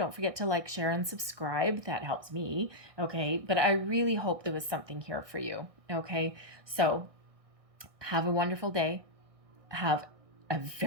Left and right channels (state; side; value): late; left; 1.6 ms